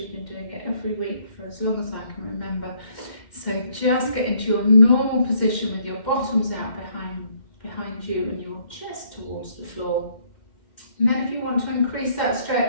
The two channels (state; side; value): late; right; 2.1 ms